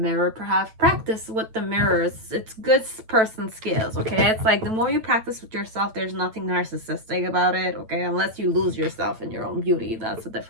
Perhaps practice with the mirrors. It's good person skills. Okay, it's like the more you practice with yourself, there's nothing narcissistic about it. Okay, unless you lose yourself in your own beauty, that's a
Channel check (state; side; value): late; left; 9.1 ms